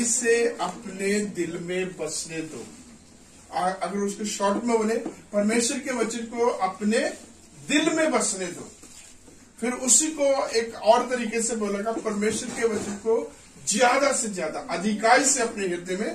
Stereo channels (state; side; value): identical; both; correlation 1.00